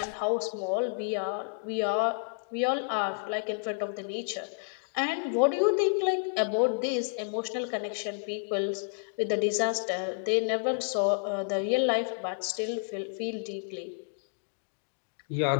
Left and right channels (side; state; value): right; silent; digital silence